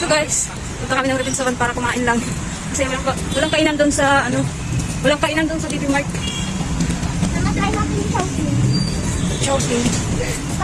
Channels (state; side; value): identical; both; correlation 1.00